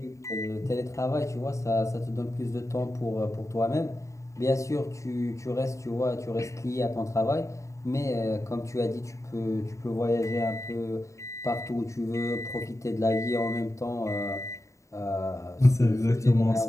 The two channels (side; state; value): right; late; 0.15 ms